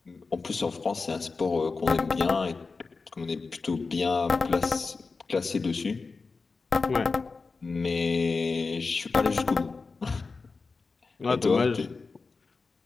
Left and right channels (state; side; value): quieter; right; 4.3 dB